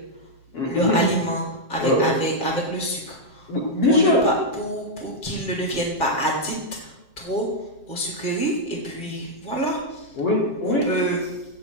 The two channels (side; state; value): right; late; 7.5 ms